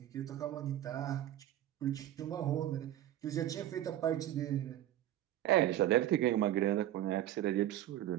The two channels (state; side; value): quieter; left; 13.0 dB